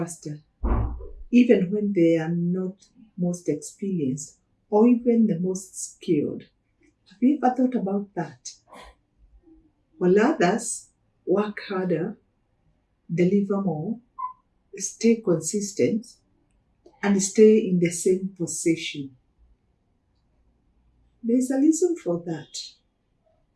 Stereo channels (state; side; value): identical; both; correlation 1.00